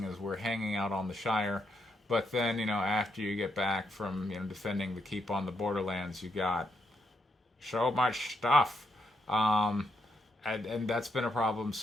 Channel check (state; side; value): normal; both; correlation 0.80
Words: as we're hanging out on the Shire. But then after you get back from defending the keep on the Borderlands, you got so much stuff. And that's been a problem